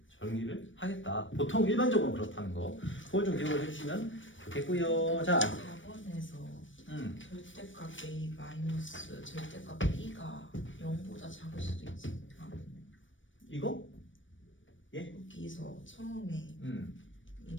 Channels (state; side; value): late; right; 0.56 ms